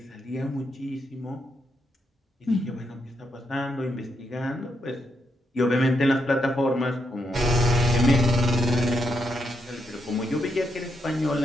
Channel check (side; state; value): both; normal; correlation 0.81